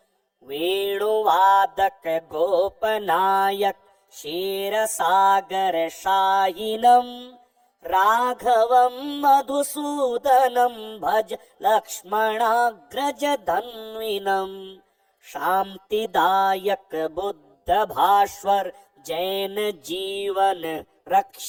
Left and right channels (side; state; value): both; identical; correlation 1.00